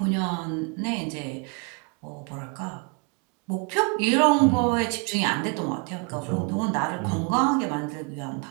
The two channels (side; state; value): left; quieter; 31.7 dB